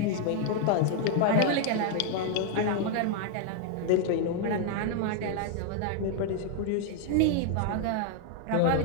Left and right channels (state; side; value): different; both; correlation 0.00